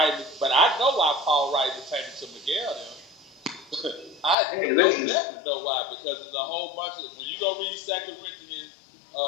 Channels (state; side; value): drops out; right; at 4.4 s